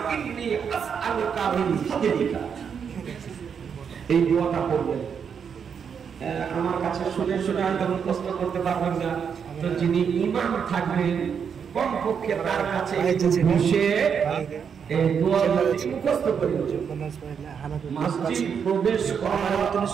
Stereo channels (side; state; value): left; quieter; 7.0 dB